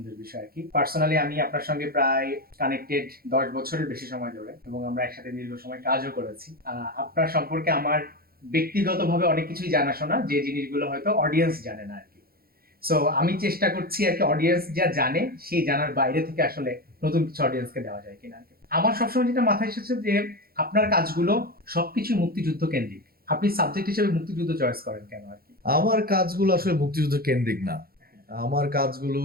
বিষয় আর কি। পার্সোনালি আমি আপনার সঙ্গে প্রায় কানেক্টেড 10 বছরের বেশি সময় ধরে, এবং আমরা একসাথে দীর্ঘ সময় কাজও করেছি। আপনার সম্পর্কে আমার ব্যক্তিগতভাবে অনেক কিছুই জানাশোনা, যে জিনিসগুলো হয়তো অডিয়েন্স জানে না আর কি। সো আমি চেষ্টা করছি আর কি, অডিয়েন্স যা জানে সেই জানার বাইরে থেকে আসলে নতুন কিছু অডিয়েন্সকে দেওয়া যায় কিনা আর কি। আমার সবসময় যেটা মাথায় এসেছে যে আপনার কাজগুলো সবকিছু মুক্তিযুদ্ধ কেন্দ্রিক। আপনি সাবজেক্ট হিসেবে মুক্তিযুদ্ধ চয়েস করেন কেন আর কি? আমার কাজগুলো আসলে মুক্তিযুদ্ধ কেন্দ্রিক না। আমার কাজগুলো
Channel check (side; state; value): left; late; 0.44 ms